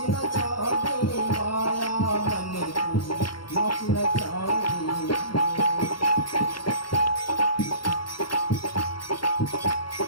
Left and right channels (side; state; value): right; late; 0.73 ms